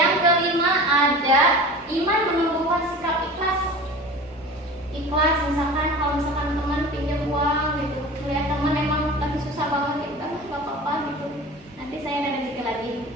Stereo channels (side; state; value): both; normal; correlation 0.37